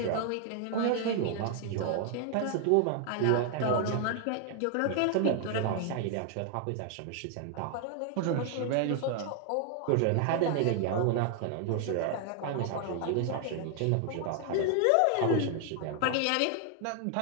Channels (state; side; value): different; both; correlation 0.00